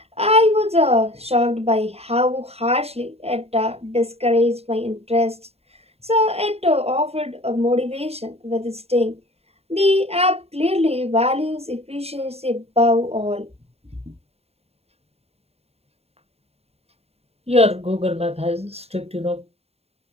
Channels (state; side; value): late; left; 0.30 ms